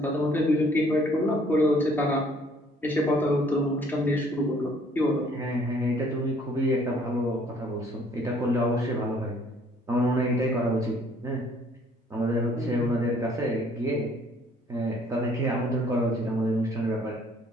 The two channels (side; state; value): both; normal; correlation 0.60